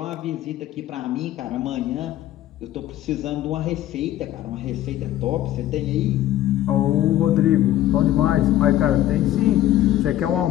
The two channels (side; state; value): right; quieter; 13.4 dB